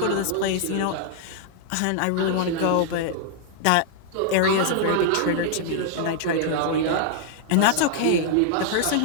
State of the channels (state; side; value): different; both; correlation -0.01